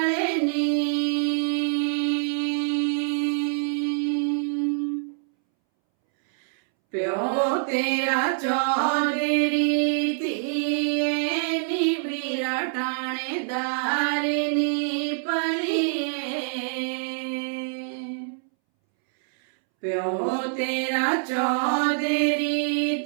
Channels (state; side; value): silent; left; 62 dB below the other